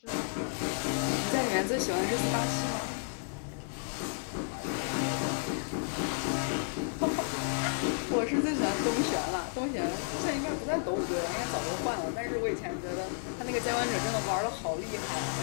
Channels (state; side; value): silent; right; digital silence